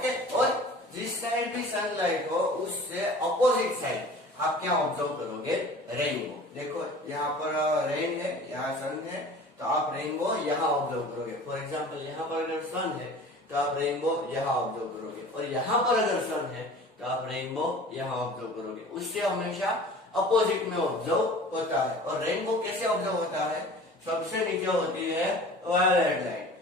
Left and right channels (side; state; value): both; normal; correlation 0.42